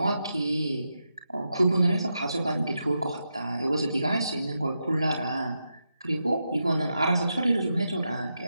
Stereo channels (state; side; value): inverted; both; correlation -0.86